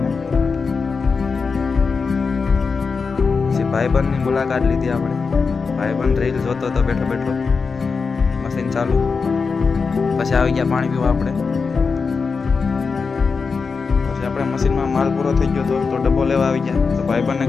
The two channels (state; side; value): quieter; right; 4.9 dB